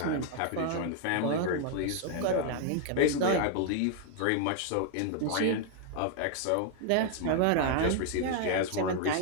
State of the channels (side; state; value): both; different; correlation 0.00